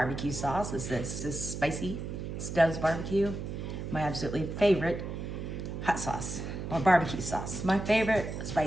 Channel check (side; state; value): right; noise; hum, 6 dB below the sound